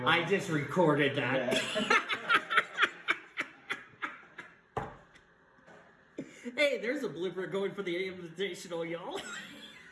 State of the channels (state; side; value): identical; both; correlation 1.00